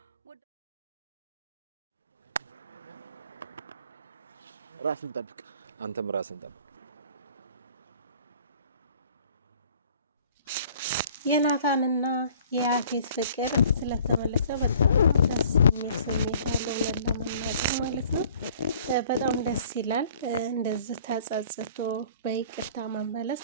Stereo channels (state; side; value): inverted; both; correlation -0.53